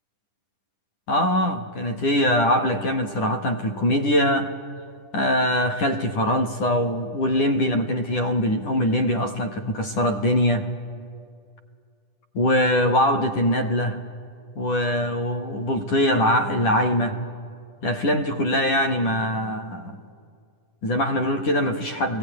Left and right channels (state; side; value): late; right; 10 ms